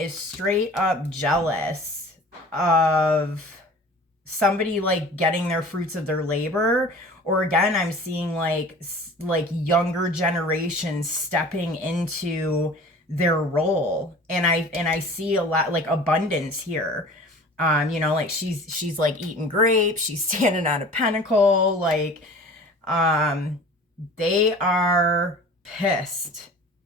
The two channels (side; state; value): both; normal; correlation 0.43